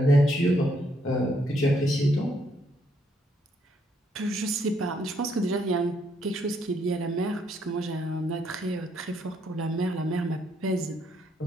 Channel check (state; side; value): normal; both; correlation 0.72